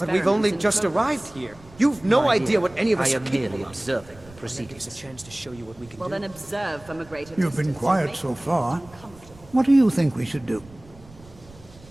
we've only experiments in just progress. arrived here. You've no idea what any of us I are am capable merely of. observing the proceedings. A chance to show you what we can Well, do. then observe from a greater You've distance. been quiet so far. What do you think we should do?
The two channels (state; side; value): noise; right; rumble, 23 dB below the sound